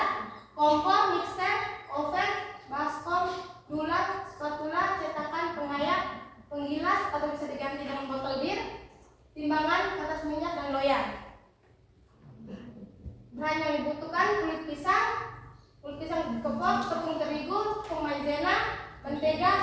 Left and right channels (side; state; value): both; identical; correlation 1.00